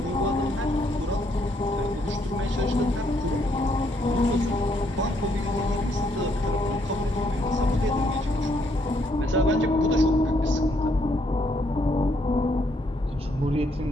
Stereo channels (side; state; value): both; normal; correlation 0.72